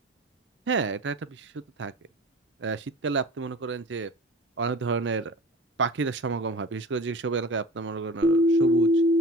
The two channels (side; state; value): both; normal; correlation 0.38